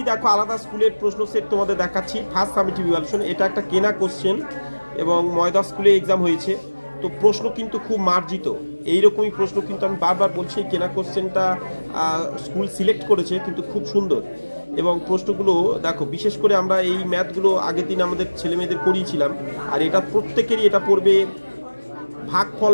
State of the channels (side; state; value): both; inverted; correlation -1.00